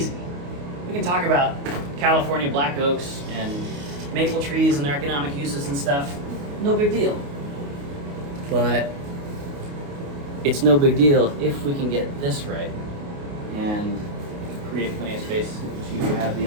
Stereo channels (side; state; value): left; late; 29 ms